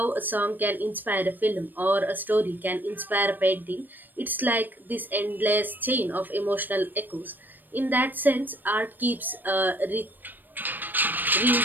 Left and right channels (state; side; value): late; left; 0.091 ms